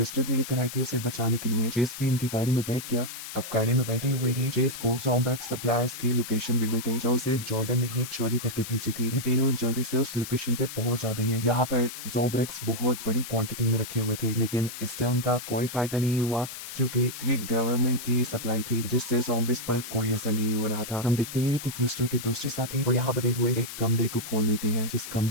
ने कराई थी उसे बचाने के लिए। चेस भी इनकी गाड़ी में बैठ गया। अब गाड़ी में बैठे हुए ही चेस को ज़ॉम्ब्रेक्स सप्लायर्स की लोकेशन भी मिल गई जो उसे जॉर्डन ने ही चोरी करके भेजी थी। ये तीनों जल्दी से उस लोकेशन पे पहुंच जाते हैं। यहाँ पर ज़ॉम्ब्रेक्स बहुत बड़ी क्वांटिटी में रखे हुए थे, लेकिन इससे उनका कोई फायदा नहीं हुआ क्योंकि ये गवर्नमेंट की सप्लाई थी जिससे ज़ॉम्बीज़ पर कोई असर नहीं हो रहा था। हम देखते हैं कि क्रिस्टल के दूसरे साथी वो यहाँ बने हुए एक कमरे को खोल देती है जिस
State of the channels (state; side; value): noise; left; hiss, 10 dB below the sound